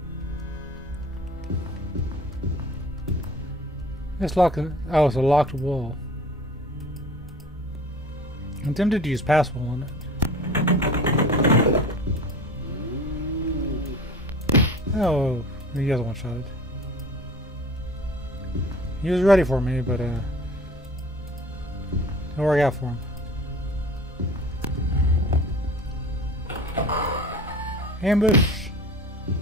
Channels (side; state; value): both; normal; correlation 0.42